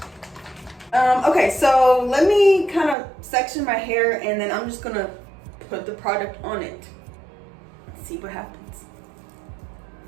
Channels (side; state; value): left; drops out; at 3.0 s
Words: Okay, so let me kind of section my hair and then I'm just gonna put the product on it. See what happens.